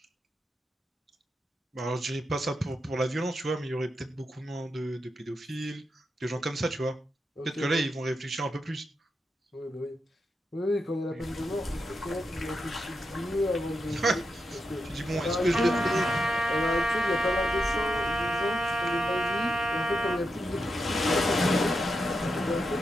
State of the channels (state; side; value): normal; both; correlation 0.86